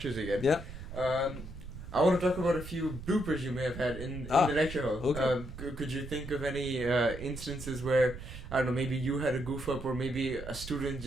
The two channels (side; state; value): right; noise; rumble, 11 dB below the sound